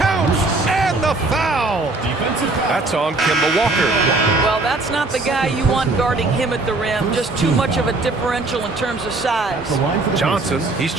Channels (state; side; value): quieter; left; 3.2 dB